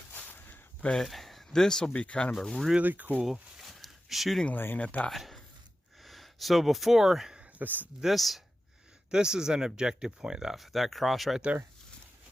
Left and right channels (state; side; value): normal; both; correlation 0.93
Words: But this will be kind of a really cool shooting lane at that. So before this is an objective point, that cross right there.